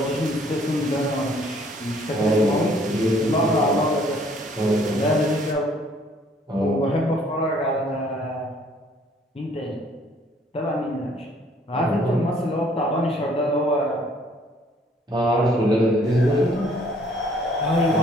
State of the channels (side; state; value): both; normal; correlation 0.61